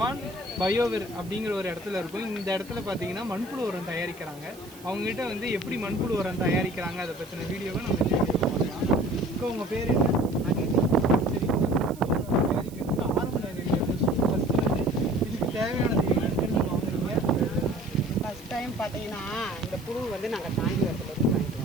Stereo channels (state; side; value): noise; right; hiss, 21 dB below the sound